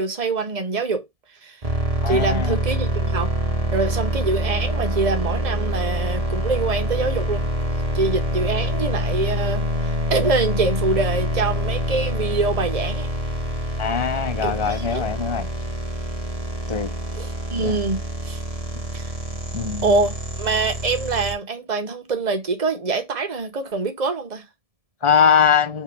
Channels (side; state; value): left; late; 1.7 ms